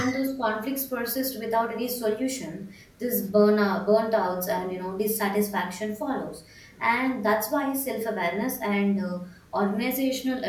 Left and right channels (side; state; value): both; identical; correlation 1.00